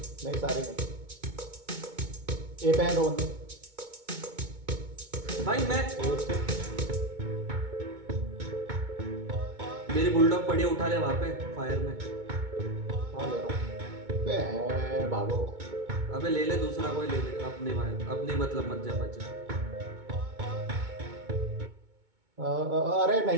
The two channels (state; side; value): late; left; 2.2 ms